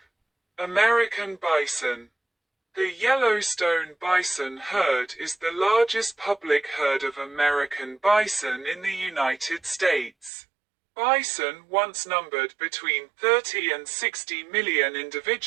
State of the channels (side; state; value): left; drops out; at 10.3 s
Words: American bison. The Yellowstone bison herd is the largest public herd of American bison in the United States. Bison once numbered between 30 and 60 million